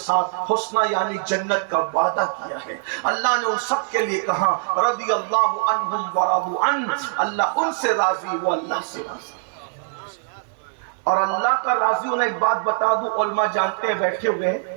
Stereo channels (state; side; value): silent; left; 64 dB below the other